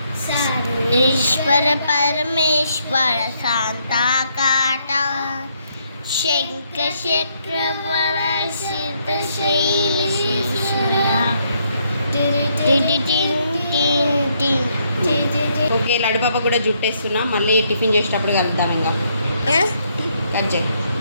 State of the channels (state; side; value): inverted; both; correlation -0.73